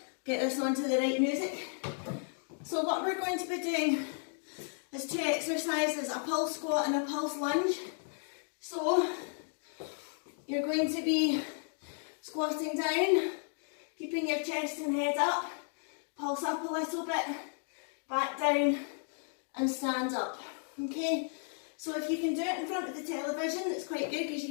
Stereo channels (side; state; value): right; silent; 55 dB below the other